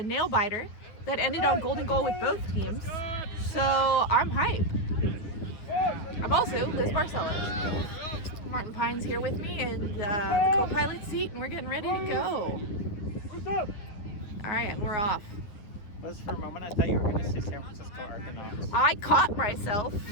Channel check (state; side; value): late; right; 9.7 ms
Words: nail biter that ended on golden goal with both teams. So I'm hype. I'm also Liz Barcelos. Martin Pine's here with me in the co-pilot seat, and we're getting ready to go. All right, and we're off. Liz, for a moment I thought you were going to say San Francisco Argonauts. I caught myself.